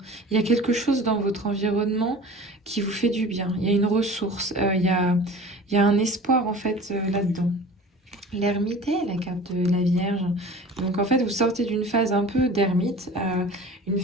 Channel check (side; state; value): both; normal; correlation 0.40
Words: Il y a quelque chose dans votre environnement qui vous fait du bien. Il y a une ressource, il y a un espoir en fait là-dedans. L'ermite est la carte de la Vierge. Donc en fait vous sortez d'une phase un peu d'ermite, une